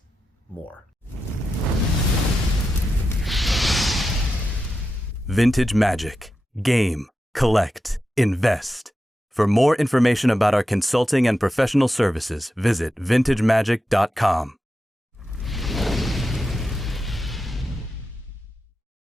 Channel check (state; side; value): normal; both; correlation 0.90